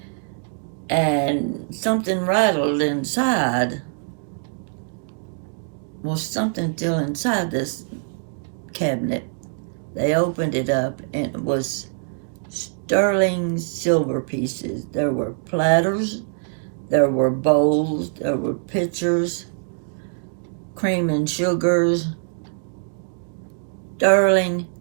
and something rattled inside. Well, something still inside this cabinet. They opened it up, and it was sterling silver pieces. There were platters, there were bowls, there were pitchers, cream and sugars, sterling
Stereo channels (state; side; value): silent; left; digital silence